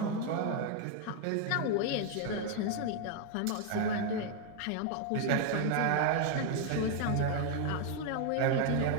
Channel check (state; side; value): different; both; correlation 0.00